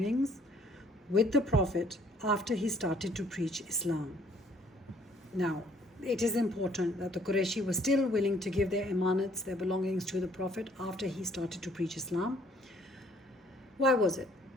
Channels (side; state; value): both; normal; correlation 0.62